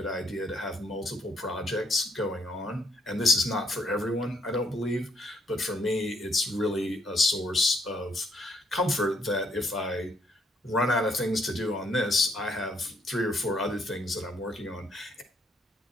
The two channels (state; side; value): normal; both; correlation 0.70